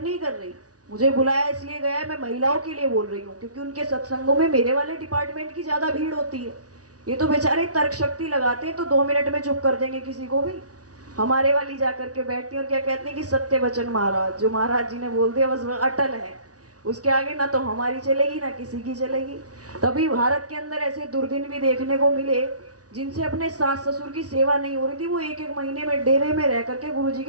नहीं कर रही, मुझे बुलाया इसलिए गया है, मैं महिलाओं के लिए बोल रही हूँ, क्योंकि उनके सत्संगों में मेरे वाले डिपार्टमेंट की ज्यादा भीड़ होती है। ये तो बेचारे तर्क शक्ति लगाते हैं तो 2 मिनट में चुप कर देंगे किसी को भी। हमारे वाली जाकर के बैठती है और क्या कहते हैं कि सत्य वचन महाराज, जो महाराज जी ने बोल दिया बस अटल है, उसके आगे ना तो हमारी चलेगी ना किसी की चलेगी। तभी भारत के अंदर ऐसे दुर्दिन भी देखने को मिले जिनसे अपने सास ससुर की सेवा नहीं हो रही थी, वो एक एक महीने में डेरे में रह करके गुरु जी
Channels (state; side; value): late; left; 0.68 ms